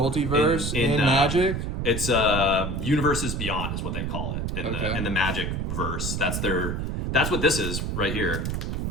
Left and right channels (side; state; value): right; noise; rumble, 2 dB below the sound